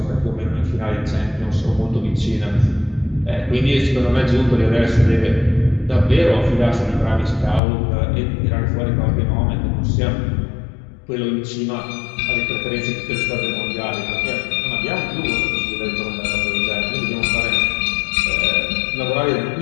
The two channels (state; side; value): drops out; right; at 7.6 s